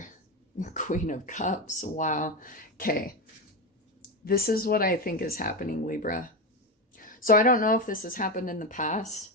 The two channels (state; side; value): normal; both; correlation 0.15